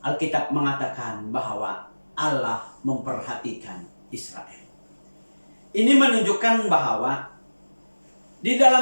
Alkitab mengatakan bahwa Allah memperhatikan Israel. Ini menunjukkan bahwa di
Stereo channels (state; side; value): inverted; both; correlation -1.00